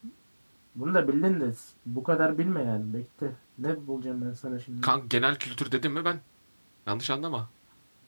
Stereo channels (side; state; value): both; inverted; correlation -1.00